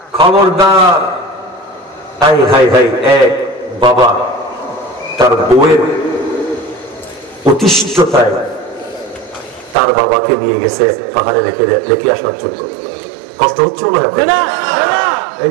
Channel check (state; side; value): drops out; left; at 9.8 s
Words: খবরদার। হাই হাই হাই, এক বাবা তার বউয়ের অতিষ্ঠতায় তার বাবাকে নিয়ে গেছে পাহাড়ে রেখে আসার জন্য। কষ্ট হচ্ছে না? এই